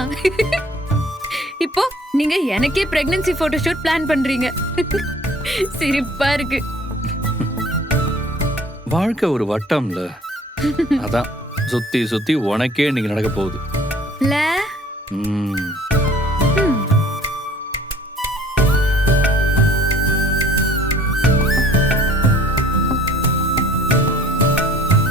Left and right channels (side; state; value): both; normal; correlation 0.54